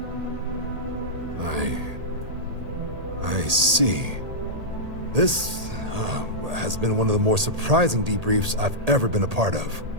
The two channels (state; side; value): late; left; 1.8 ms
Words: I see. This has been one of the more surprising debriefs I've ever been a part of.